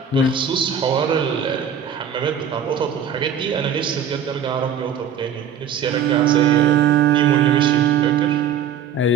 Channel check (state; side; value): quieter; left; 7.6 dB